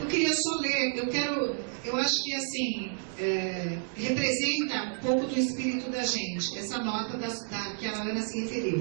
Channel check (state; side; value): silent; left; 58 dB below the other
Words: queria só ler, eu acho que assim, representa um pouco do espírito da gente, essa nota que a Ana se